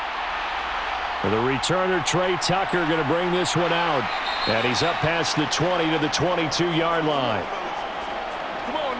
The returner, Trey Tucker, going to bring this one out. And he's up past the 20 to the 22-yard line. Come on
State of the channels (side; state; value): both; identical; correlation 1.00